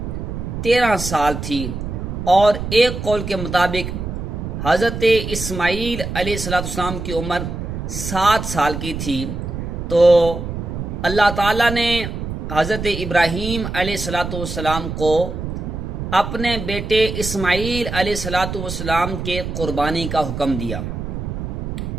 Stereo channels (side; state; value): right; noise; rumble, 5 dB below the sound